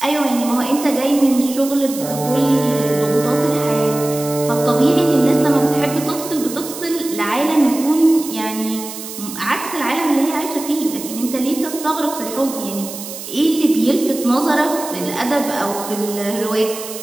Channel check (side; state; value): right; noise; hiss, 11 dB below the sound